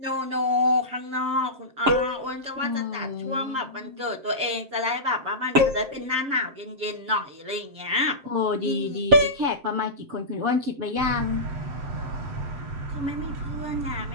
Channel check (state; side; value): late; left; 7.7 ms